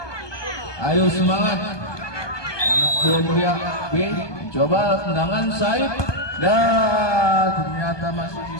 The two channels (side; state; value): right; late; 1.2 ms